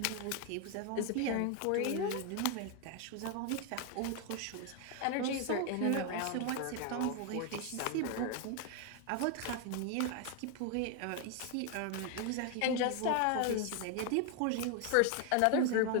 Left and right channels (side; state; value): both; different; correlation 0.01